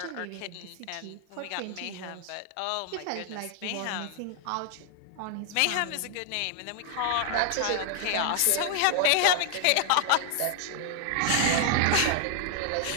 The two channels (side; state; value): both; different; correlation 0.00